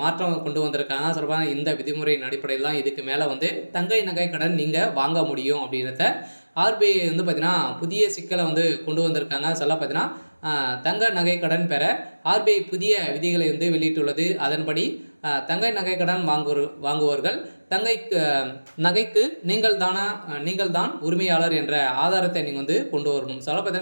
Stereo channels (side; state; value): both; inverted; correlation -1.00